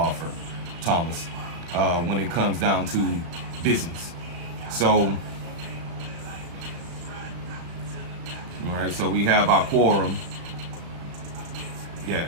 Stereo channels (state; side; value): late; left; 35 ms